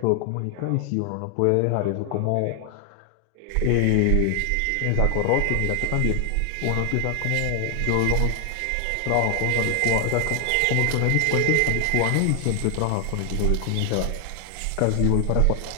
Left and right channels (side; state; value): both; different; correlation 0.00